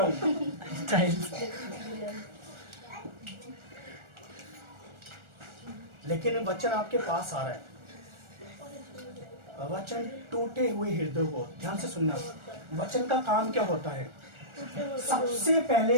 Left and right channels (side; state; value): left; late; 1.4 ms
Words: हूं, स्टाइल। लेकिन वचन आपके पास आ रहा है, वचन टूटे हुए हृदय को, ध्यान से सुनना, वचन का काम क्या होता है, सबसे